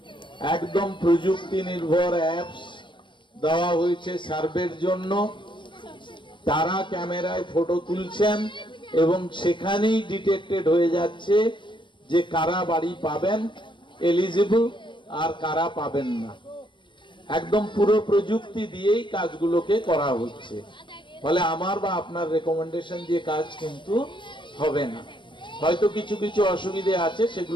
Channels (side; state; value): right; late; 0.23 ms